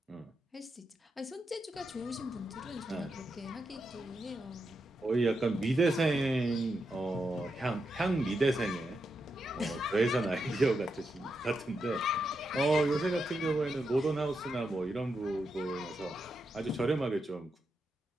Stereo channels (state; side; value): normal; both; correlation 0.85